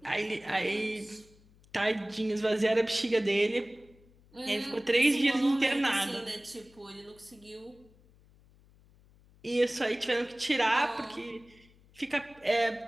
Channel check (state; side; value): noise; left; hum, 28 dB below the sound